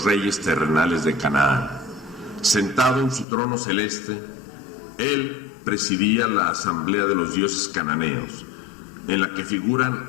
reyes terrenales de Canaán. Sentado en su trono celeste, él presidía la asamblea de los dioses cananeos, en la que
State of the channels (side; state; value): right; drops out; at 3.2 s